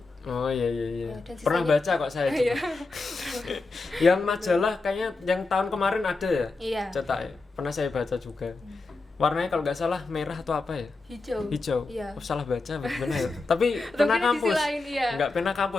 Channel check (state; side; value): quieter; right; 3.6 dB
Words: Oh iya. Ya, dan Pernah sisanya- baca kok saya. juga. Yang majalah kayaknya yang tahun kemarin ada ya? Iya. Cetak ya. Pernah saya baca juga. Warnanya kalau nggak salah merah atau apa ya? Hijau. Iya. Oh, salah baca bagaimana ya? Tapi Atau pena mungkin di sisi kampus. lain, iya. Enggak pena